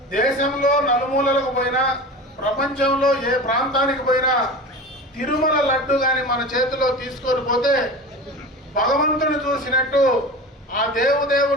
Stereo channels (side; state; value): both; normal; correlation 0.32